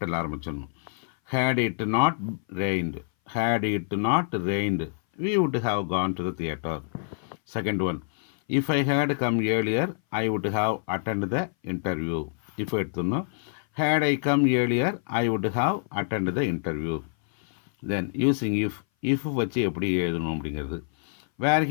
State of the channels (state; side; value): silent; right; 58 dB below the other